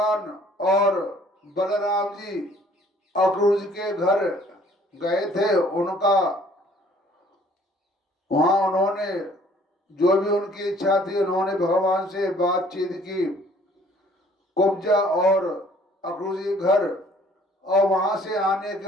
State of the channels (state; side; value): normal; both; correlation 0.57